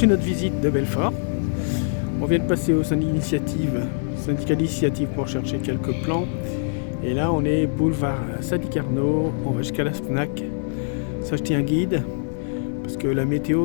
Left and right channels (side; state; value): right; silent; 63 dB below the other